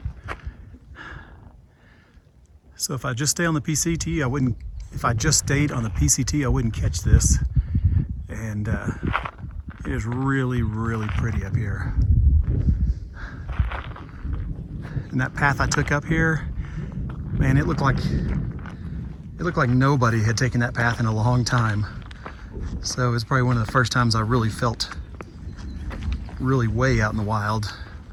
So if I just stay on the PCT, I wouldn't. If I just stayed on the PCT, I wouldn't catch this. And it is really, really pretty up here. And that path I took up here, man, it looked like nobody had taken that path in a long time. So it's probably one of the first times I really felt really way out in the wild.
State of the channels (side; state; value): both; identical; correlation 1.00